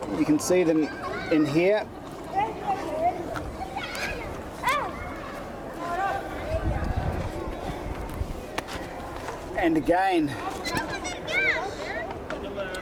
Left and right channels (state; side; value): identical; both; correlation 1.00